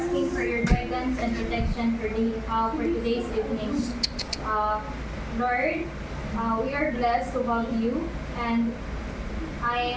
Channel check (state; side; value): identical; both; correlation 1.00